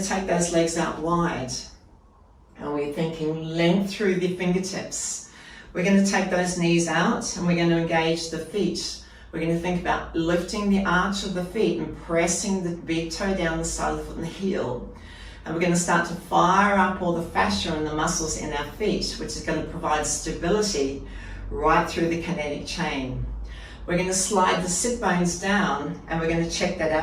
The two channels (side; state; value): both; identical; correlation 1.00